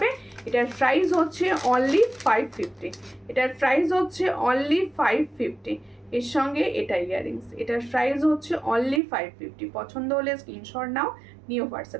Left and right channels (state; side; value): drops out; left; at 9.0 s